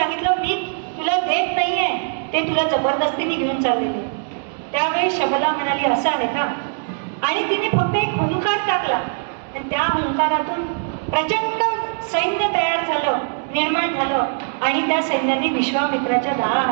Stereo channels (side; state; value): left; silent; digital silence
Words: मी तुला देत नाहीये, ते तुला जबरदस्तीने घेऊन चाललेले. त्यावेळी शबला म्हणाली, असं आहे का. आणि तिने फक्त एक हुंकार टाकला आणि त्या हुंकारातून प्रचंड सैन्य तयार झालं, निर्माण झालं आणि त्या सैन्याने विश्वामित्राच्या